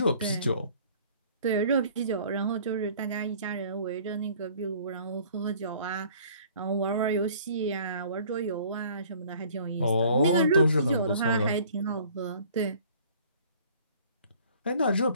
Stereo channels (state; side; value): inverted; both; correlation -0.53